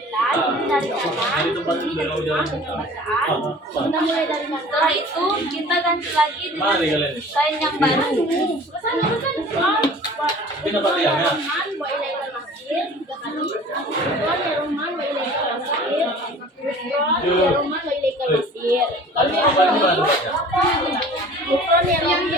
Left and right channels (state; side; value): normal; both; correlation 0.45